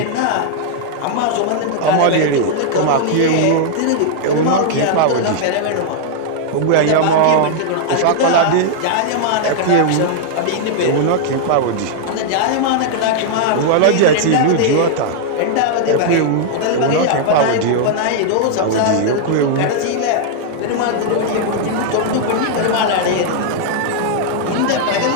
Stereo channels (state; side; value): different; both; correlation -0.01